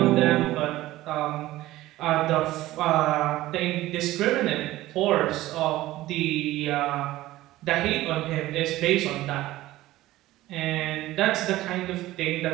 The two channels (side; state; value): left; quieter; 16.4 dB